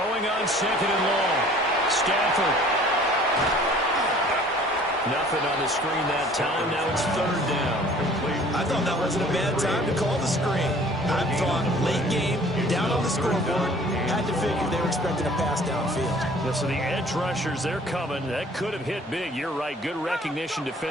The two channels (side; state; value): both; normal; correlation 0.52